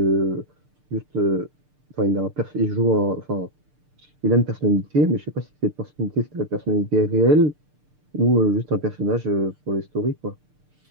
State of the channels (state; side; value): late; left; 6.7 ms